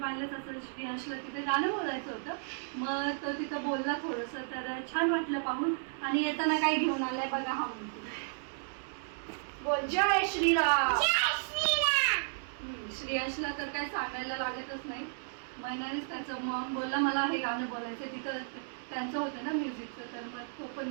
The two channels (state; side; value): silent; left; digital silence